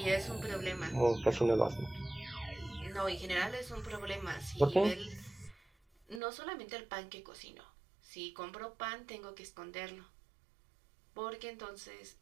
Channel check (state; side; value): drops out; left; at 6.2 s